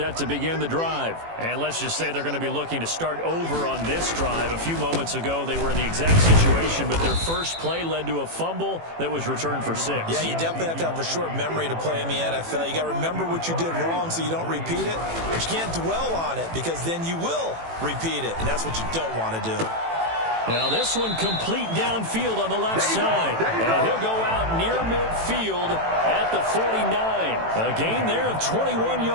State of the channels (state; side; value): late; left; 18 ms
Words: to begin the drive. And let's just say they're going to be looking to start over on this drive. A few moments ago, they were in the exact situation, but their first play led to a fumble that was returned for 6. Yeah, you definitely have to have a short memory to play in the NFL. You got to remember what you did wrong so you don't repeat it. But you can't dwell on it because then you will repeat it, and that's what you don't want to do. Now this one complete downfield on the left side. And he'll go out near midfield at the 49. A gain there of 21